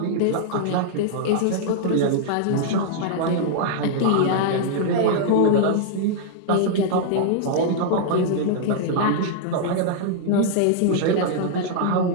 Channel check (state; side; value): different; both; correlation -0.01